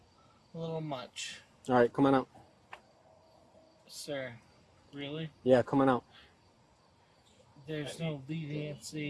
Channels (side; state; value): both; identical; correlation 1.00